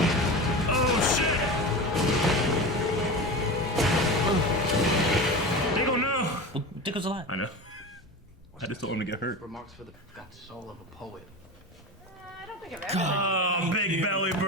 Oh shit! Diggle, no! Well, Dickle's alive. I know. I just don't want him to get hurt. Remarks for the got the soul of a poet. I don't think I've ever. Oh, Big Belly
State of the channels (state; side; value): normal; both; correlation 0.27